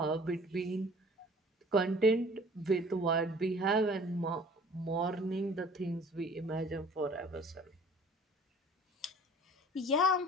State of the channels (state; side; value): normal; both; correlation 0.49